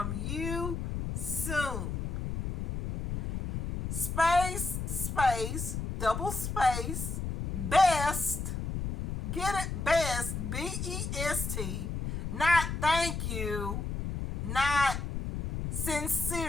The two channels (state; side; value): noise; left; rumble, 4 dB below the sound